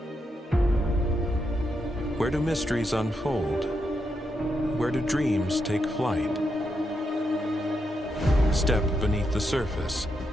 Where do mysteries unfold? Where do dreams take flight? Step beneath the surface,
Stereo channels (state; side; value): normal; both; correlation 0.83